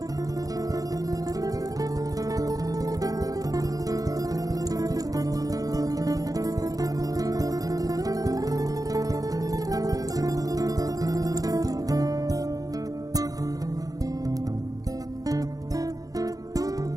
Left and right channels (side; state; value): left; late; 0.17 ms